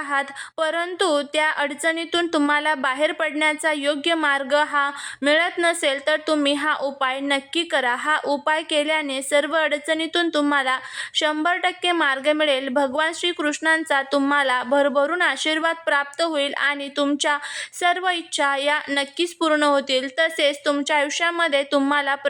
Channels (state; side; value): identical; both; correlation 1.00